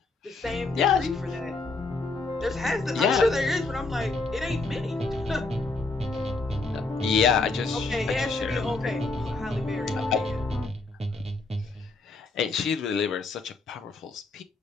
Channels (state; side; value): quieter; right; 3.6 dB